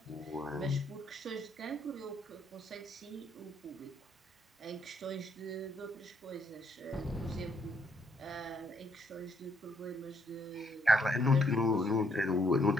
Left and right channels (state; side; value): normal; both; correlation 0.71